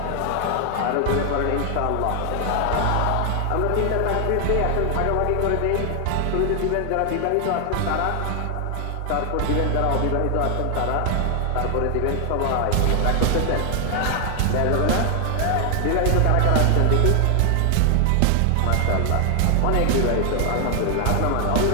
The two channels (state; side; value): different; both; correlation 0.00